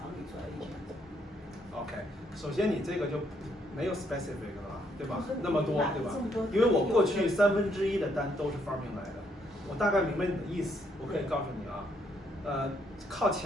你做 agent？OK， 首先你这个就没有 specific 了吧，对吧？那么么多，对吧？因为我过去1/3的单都是 Farming 来的，我大概明白你的意思，我可以告诉你啊，靠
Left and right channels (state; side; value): normal; both; correlation 0.72